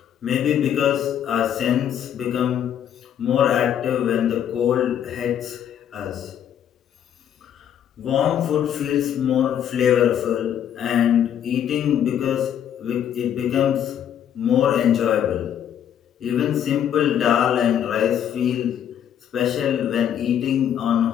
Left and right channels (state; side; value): quieter; right; 9.6 dB